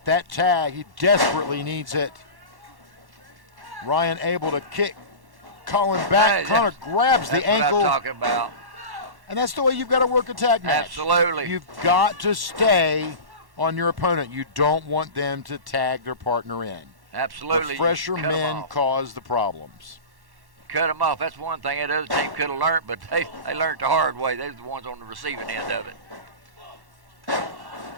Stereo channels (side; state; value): left; late; 1.1 ms